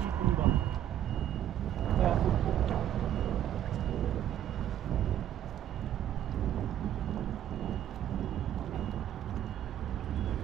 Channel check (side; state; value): left; quieter; 11.1 dB